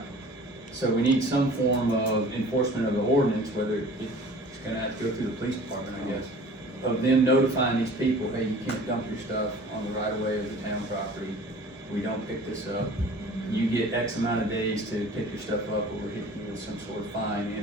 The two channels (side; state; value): both; normal; correlation 0.45